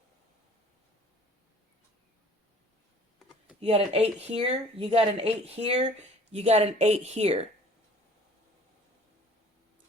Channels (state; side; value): normal; both; correlation 0.51